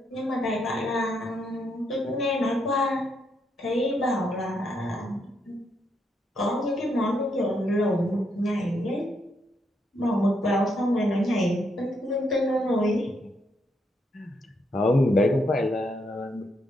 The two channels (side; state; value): both; normal; correlation 0.77